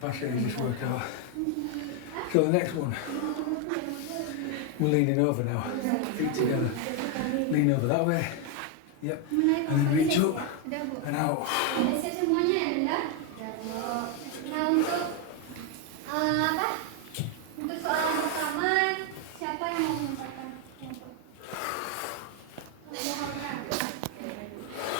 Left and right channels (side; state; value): both; different; correlation 0.01